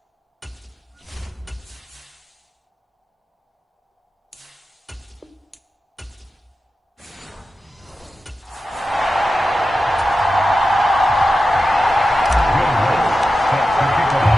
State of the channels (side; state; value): both; normal; correlation 0.92